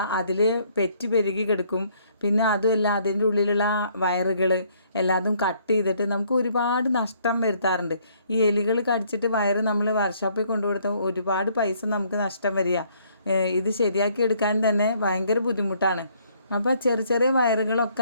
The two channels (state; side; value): inverted; both; correlation -0.65